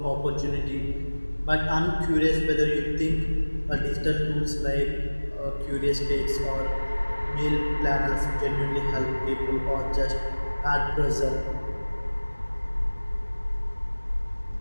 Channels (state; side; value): inverted; both; correlation -1.00